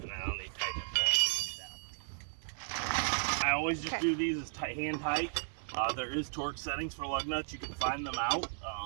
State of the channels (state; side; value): silent; left; 55 dB below the other